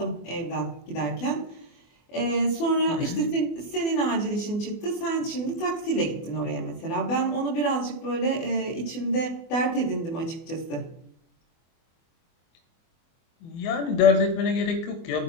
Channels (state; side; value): late; right; 24 ms